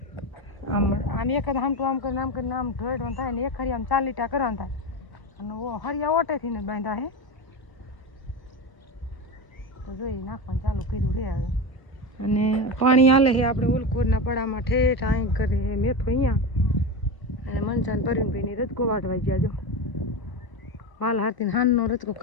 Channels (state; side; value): late; right; 1.0 ms